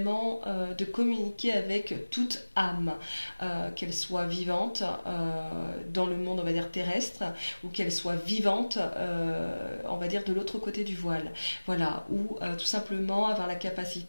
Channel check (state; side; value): inverted; both; correlation -1.00